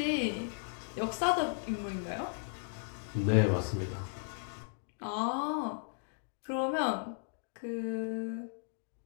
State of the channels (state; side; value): silent; right; digital silence